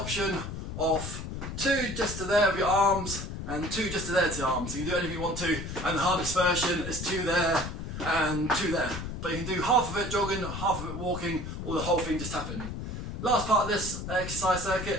option of 2 just to there of your arms and 2 just to there to your arms. So you can do anything you want to, and the hardest version is 2 there and 2 there. But you can do half of it jogging, half of it walking, or the whole thing just tapping. Last part of this exercise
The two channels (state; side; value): noise; left; rumble, 7 dB below the sound